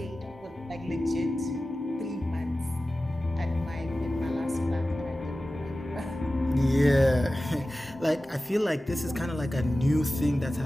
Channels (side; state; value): both; normal; correlation 0.95